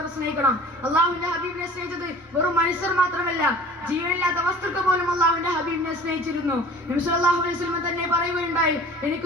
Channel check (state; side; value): normal; both; correlation 0.44